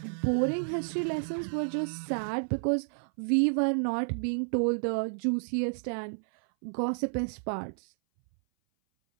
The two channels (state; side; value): silent; left; 57 dB below the other